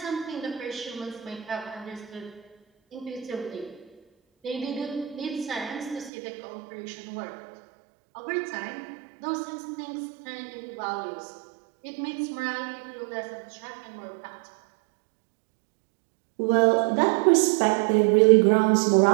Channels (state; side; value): drops out; left; at 6.1 s